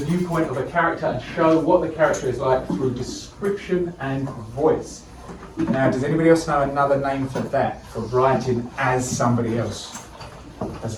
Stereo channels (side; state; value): both; identical; correlation 1.00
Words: of a character and show what the character is like through description and voice. Now, does anybody else know another name for that? For writing as somebody else? As